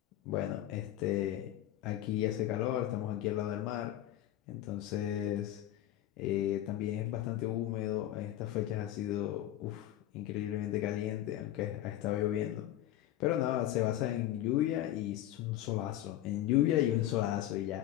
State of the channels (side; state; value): right; quieter; 13.3 dB